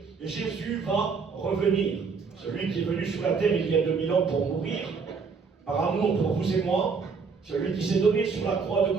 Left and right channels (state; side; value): quieter; left; 5.2 dB